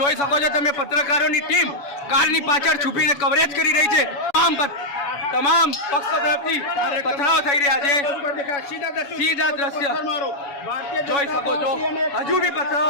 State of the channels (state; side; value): late; right; 7.1 ms